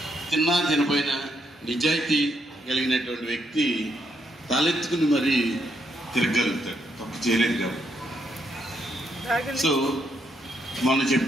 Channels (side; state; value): both; normal; correlation 0.76